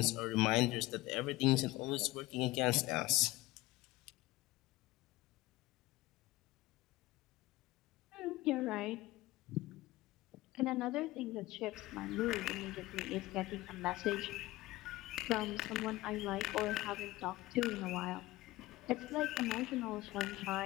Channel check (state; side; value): quieter; right; 18.8 dB